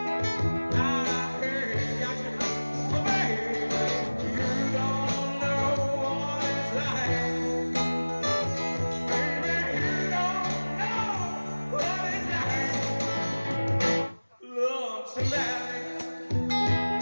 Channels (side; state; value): both; inverted; correlation -1.00